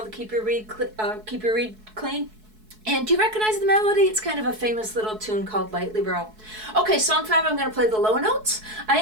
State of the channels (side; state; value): left; late; 4.6 ms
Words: to keep your reed clean. And do you recognize the melody? It's kind of a famous little tune called Lightly Row. Okay, song 5, I'm going to play the low notes. I